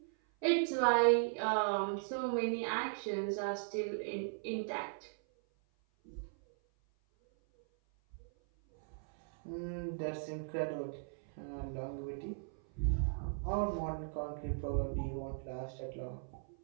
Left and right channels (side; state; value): left; silent; 53 dB below the other